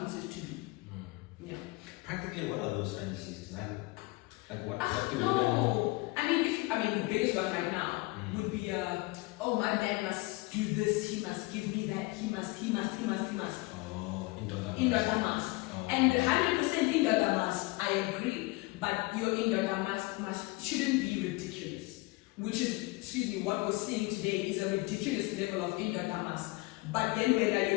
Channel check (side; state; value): right; quieter; 23.3 dB